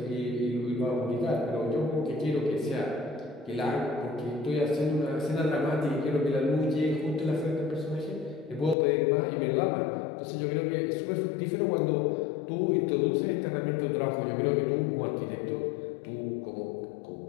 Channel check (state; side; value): drops out; right; at 8.8 s